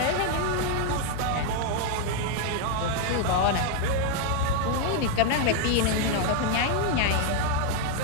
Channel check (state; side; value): different; both; correlation 0.00